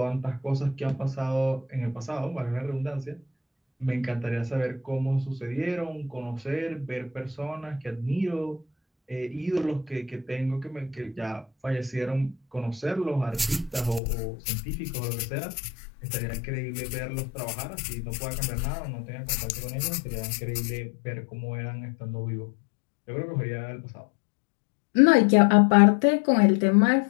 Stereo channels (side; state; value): right; drops out; at 14.0 s